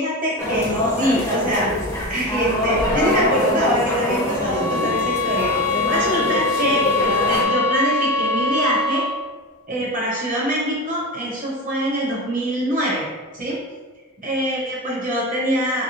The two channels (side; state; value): both; normal; correlation 0.24